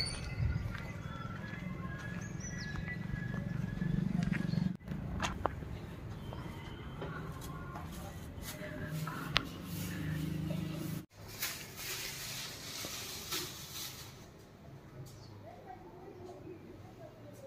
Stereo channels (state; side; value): identical; both; correlation 1.00